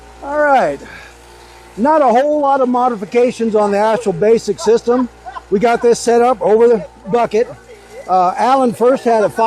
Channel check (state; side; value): identical; both; correlation 1.00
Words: All right. Not a whole lot of modifications on the actual basic system. We got this set up over the bucket. Alan first had a